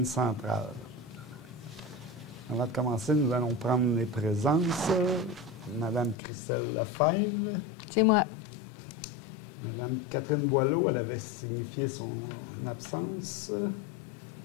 Avant de commencer, nous allons prendre les présences. Madame Christelle Lefebvre. C'est moi. Madame Catherine Boileau, elle avait signifié son absence.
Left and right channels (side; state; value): right; drops out; at 6.2 s